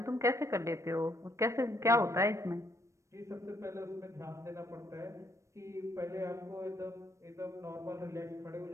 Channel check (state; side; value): late; left; 0.15 ms